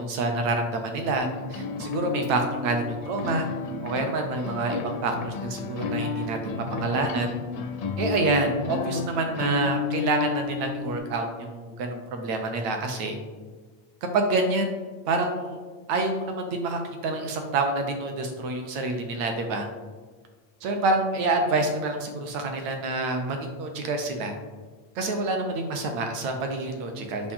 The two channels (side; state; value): left; late; 9.1 ms